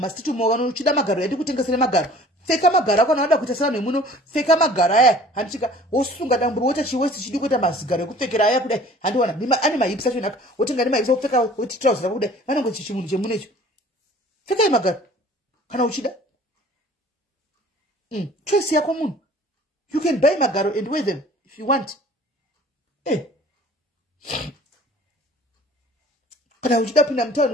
mo vanhu uchida magaro yadi kutengesera magaro pfeka magaro akona wada kuita sevanhu muno pfeka magaro aya handichika wosunga damburu wota chiwesti chidi kuita mazigaro ekupfekera aya kudai handiona ane mahips acho naka wotenga ne mahips opfeka woti trouser kudai vanenge chichimunhu chemunecho pfeka magaro kana uchida. Choice yako munhu. You can buy magaro and wear them if you want. Kana uchida pinda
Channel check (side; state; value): both; normal; correlation 0.49